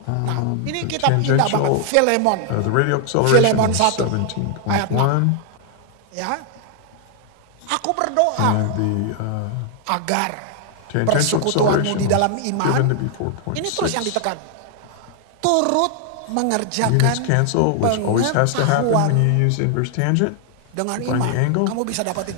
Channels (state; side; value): different; both; correlation 0.00